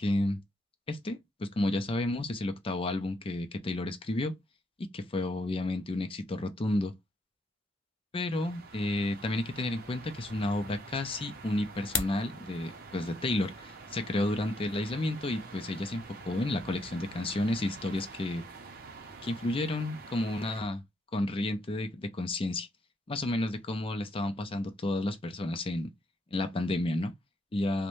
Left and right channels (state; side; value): normal; both; correlation 0.75